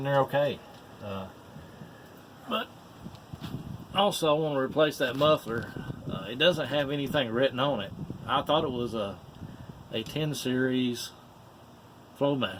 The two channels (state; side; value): identical; both; correlation 1.00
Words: there okay. But also I want to replace that muffler. It doesn't have anything written on it. I thought it was a 10 series